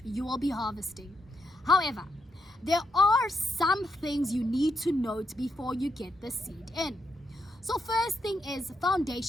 you will be harvesting. However, there are some things you need to note before you get the seed in. So first thing is,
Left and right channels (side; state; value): both; normal; correlation 0.81